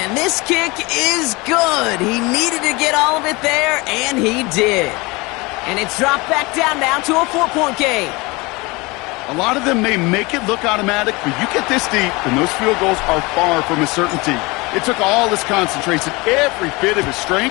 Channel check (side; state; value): right; quieter; 24.5 dB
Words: this kick is good. He needed to get all of it there, and he did. And it's dropped back down now to a 4-point game. A lot of them may make it look automatic, but you get this deep, and those field goals are far from a certainty. It took all his concentration, every bit of his